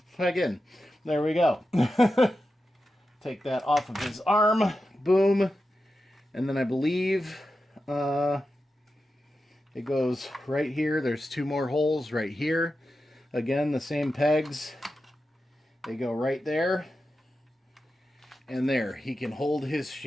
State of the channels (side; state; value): both; normal; correlation 0.90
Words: plug in. There we go. Take that off of his arm. Boom. And then I believe... it goes right here. There's 2 more holes right here. Again, the same pegs. They go right there. And there, he can hold his